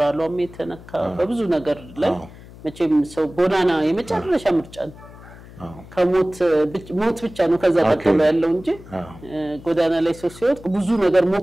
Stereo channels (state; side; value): noise; left; hum, 19 dB below the sound